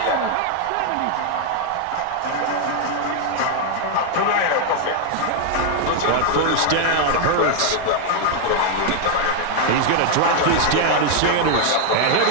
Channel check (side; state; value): both; different; correlation 0.00